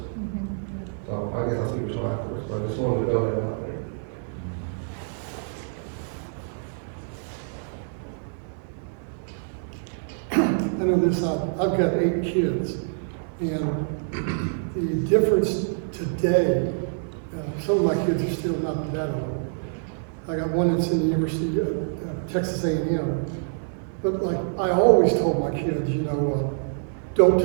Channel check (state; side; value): silent; left; 61 dB below the other